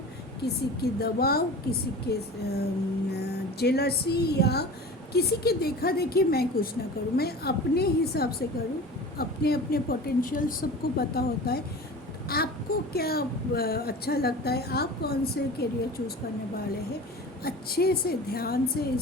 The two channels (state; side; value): normal; both; correlation 0.36